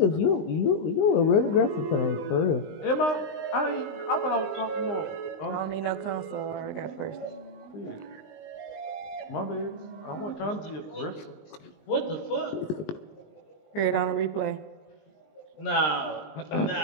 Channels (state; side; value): late; right; 20 ms